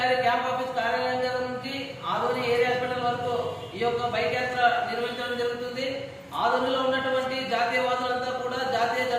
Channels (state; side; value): identical; both; correlation 1.00